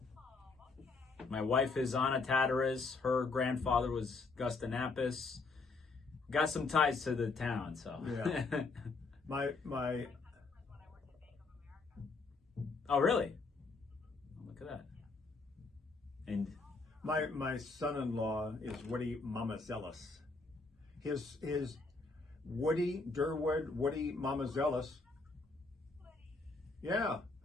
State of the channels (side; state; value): right; quieter; 3.9 dB